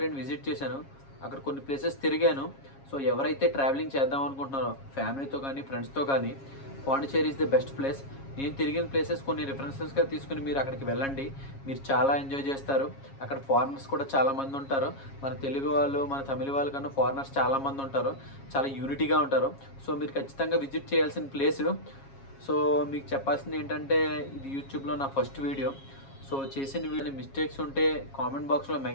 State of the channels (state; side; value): late; right; 7.3 ms